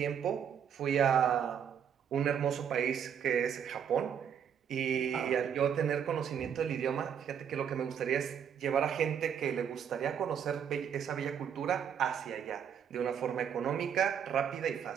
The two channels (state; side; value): quieter; left; 8.2 dB